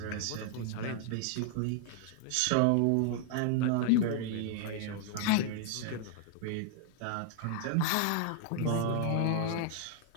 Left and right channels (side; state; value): both; different; correlation -0.01